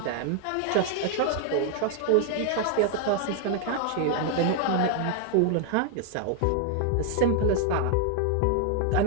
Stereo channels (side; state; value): both; different; correlation 0.00